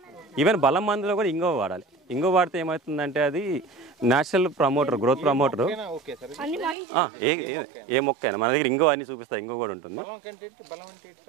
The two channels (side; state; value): left; drops out; at 6.8 s